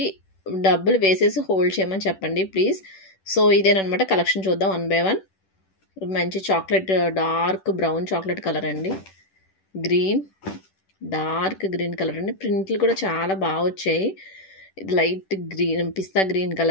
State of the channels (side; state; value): right; late; 10 ms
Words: డబ్బులు వేసేసి హోల్డ్ చేయమని చెప్పండి ప్లీజ్. సో ఇదేనమాట కలెక్షన్. చూద్దాం వన్ బై వన్. మంచి chocolate, dark brown chocolate colour అండి. గ్రీన్, డార్క్ గ్రీన్ కలర్ అండి. ప్రింట్లు కూడా చాలా బాగా వచ్చాయి. లైట్ గ్రీన్, పిస్తా గ్రీన్